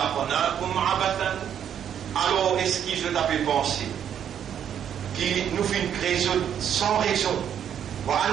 عبثا. Alors est-ce que je t'avais pensé qui nous fait une création sans raison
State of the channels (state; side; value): quieter; left; 9.1 dB